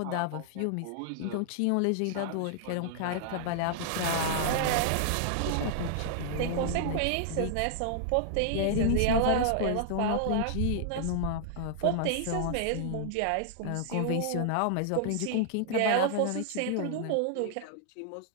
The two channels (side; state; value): both; different; correlation -0.01